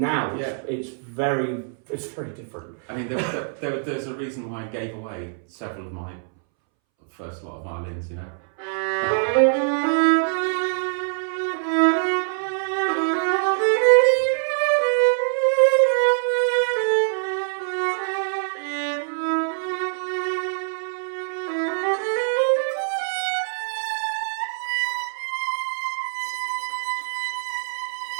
it's very different. I mean, there's a reason why I gave away several of my first lot of violins, you know.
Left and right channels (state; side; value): silent; left; 62 dB below the other